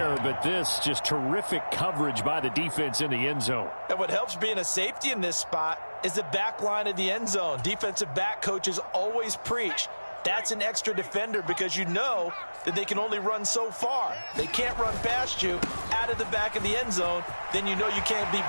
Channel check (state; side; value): inverted; both; correlation -1.00